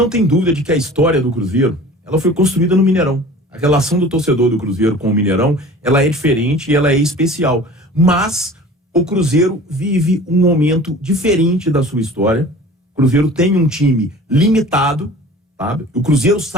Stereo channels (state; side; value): normal; both; correlation 0.43